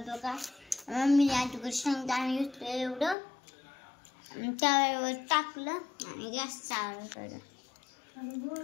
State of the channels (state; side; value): drops out; right; at 3.2 s